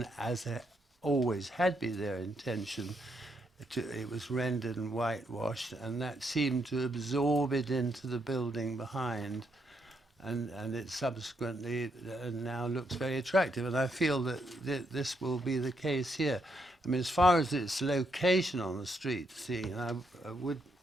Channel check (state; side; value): normal; both; correlation 0.77